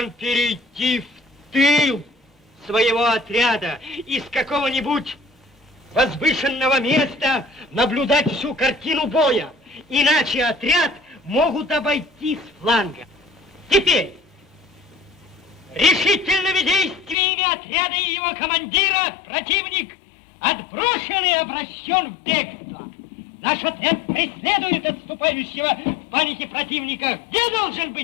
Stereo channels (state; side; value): drops out; right; at 17.2 s